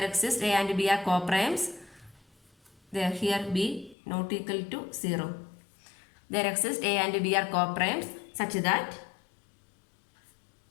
exists a and b are coprimes. There here b not equal to 0. There exists a and b are coprimes such that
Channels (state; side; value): drops out; right; at 4.0 s